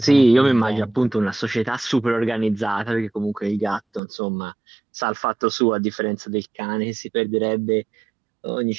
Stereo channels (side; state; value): left; drops out; at 4.0 s